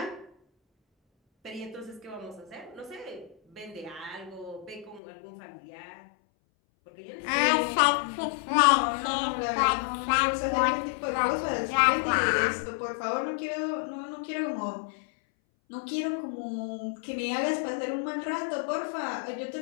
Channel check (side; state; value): right; drops out; at 5.0 s